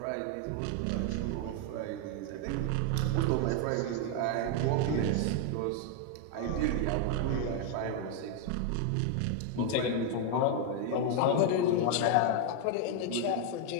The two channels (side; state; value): both; different; correlation 0.00